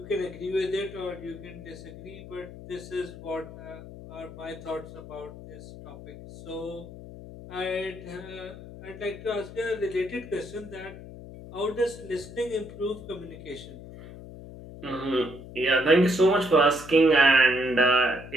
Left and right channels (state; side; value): noise; left; hum, 14 dB below the sound